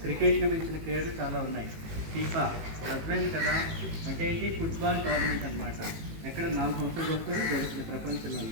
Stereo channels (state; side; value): late; left; 18 ms